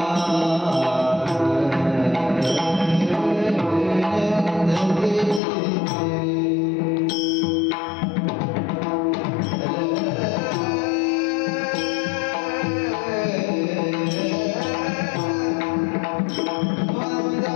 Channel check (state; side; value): drops out; right; at 5.4 s